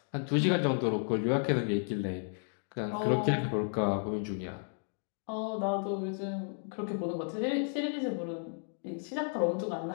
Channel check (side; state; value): right; silent; 56 dB below the other